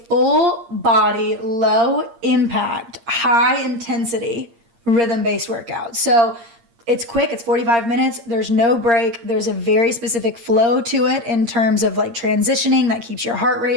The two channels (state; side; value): late; left; 8.6 ms